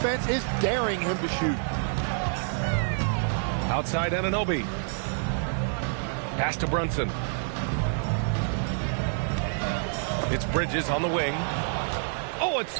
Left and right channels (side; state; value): left; silent; 59 dB below the other